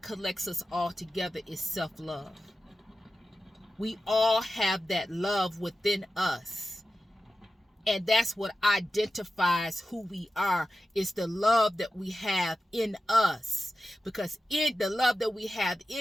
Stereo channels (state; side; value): normal; both; correlation 0.92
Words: collects us all together is self-love. We all have that love within us. And that's what identifies who we are, is the love that we have in us. Because in the love that we have